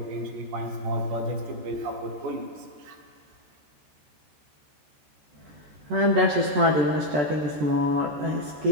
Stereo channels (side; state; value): left; late; 14 ms